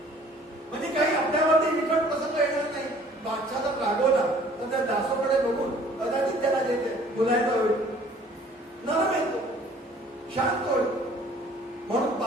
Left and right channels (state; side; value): normal; both; correlation 0.54